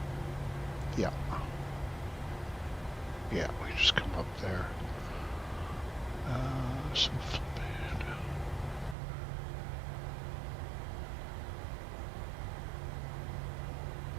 Yeah. Yeah, we just come up there. So flip it.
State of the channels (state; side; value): drops out; left; at 9.0 s